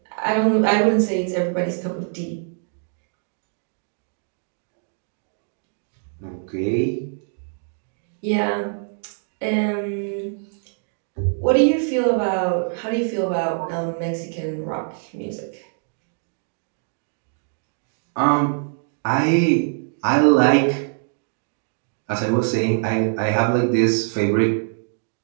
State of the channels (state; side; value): silent; left; 63 dB below the other